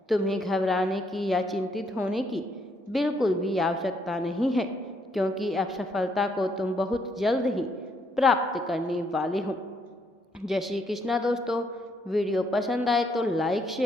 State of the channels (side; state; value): both; normal; correlation 0.72